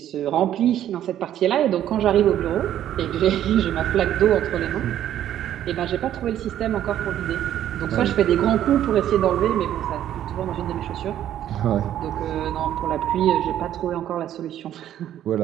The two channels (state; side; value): quieter; left; 11.4 dB